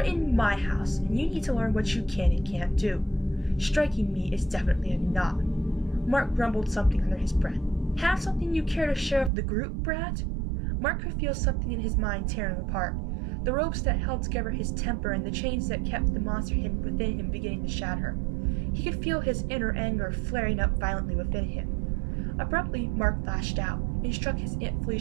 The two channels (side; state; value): left; drops out; at 9.3 s